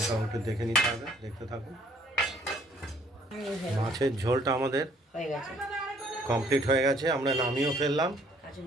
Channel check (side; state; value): both; normal; correlation 0.61